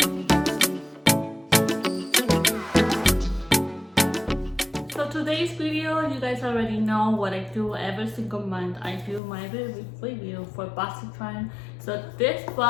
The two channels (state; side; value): drops out; right; at 9.2 s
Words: So today's video, you guys already know what I do every single month. I do my review for BoxyCharm. So this